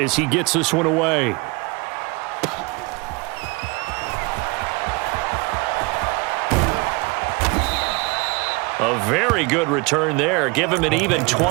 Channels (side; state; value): left; quieter; 26.4 dB